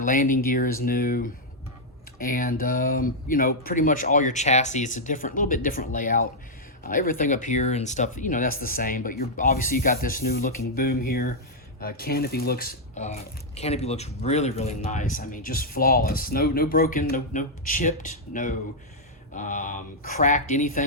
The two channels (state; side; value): normal; both; correlation -0.05